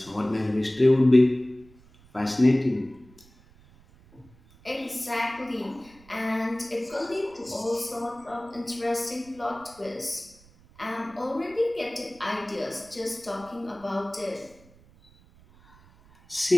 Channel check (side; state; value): right; noise; rumble, 26 dB below the sound